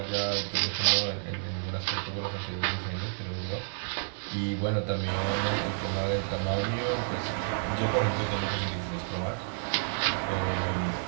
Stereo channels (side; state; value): left; silent; 56 dB below the other